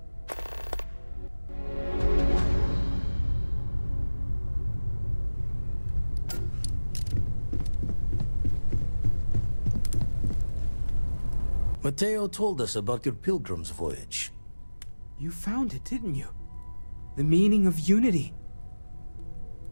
Mateo told us about your pilgrim's voyage. You found it, didn't you? The meaning of unity.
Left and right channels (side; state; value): both; inverted; correlation -1.00